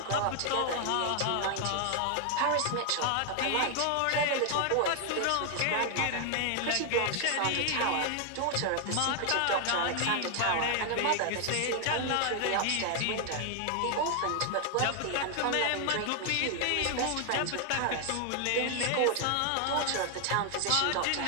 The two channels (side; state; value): both; different; correlation 0.00